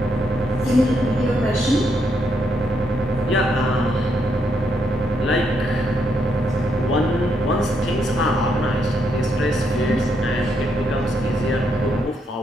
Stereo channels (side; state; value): both; normal; correlation 0.77